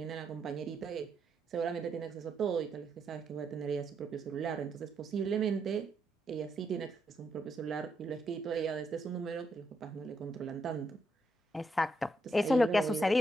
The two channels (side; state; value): both; normal; correlation 0.80